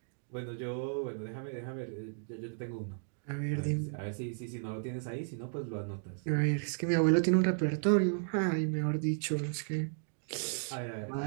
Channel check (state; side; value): silent; left; digital silence